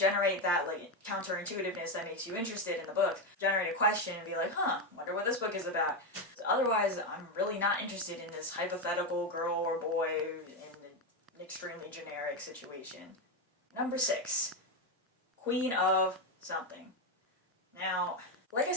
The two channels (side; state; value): both; normal; correlation 0.10